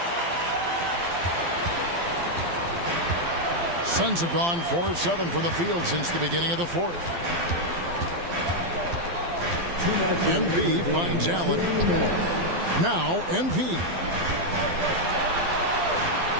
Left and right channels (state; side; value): late; left; 12 ms